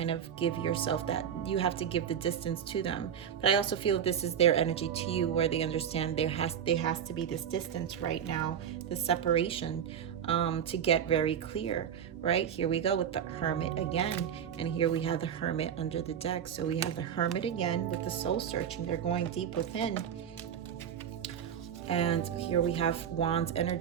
of give yourself that, you have to give the distance to them. But I also feel this is their energy to you, where they understand there has to be this distance right now, this separation, to get very clear, right? Here we go with the Hermit again, and here we have the Hermit under the deck. So we have the Hermit again with the soul searching. They're going deep within. And here we have Wands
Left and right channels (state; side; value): quieter; left; 8.7 dB